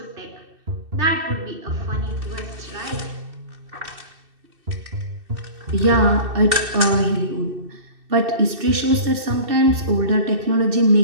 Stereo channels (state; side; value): late; left; 2.6 ms